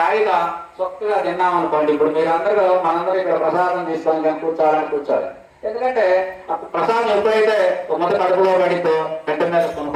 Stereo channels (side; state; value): both; identical; correlation 1.00